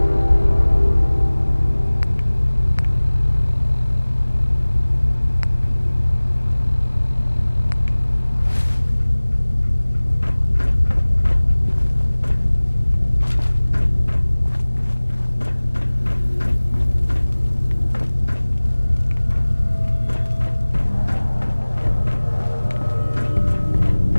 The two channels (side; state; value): both; inverted; correlation -1.00